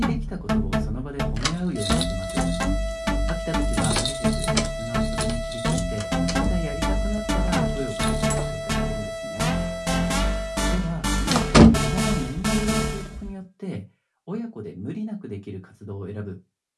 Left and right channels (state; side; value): identical; both; correlation 1.00